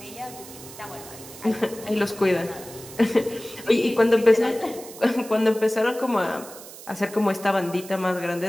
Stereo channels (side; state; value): right; noise; hiss, 16 dB below the sound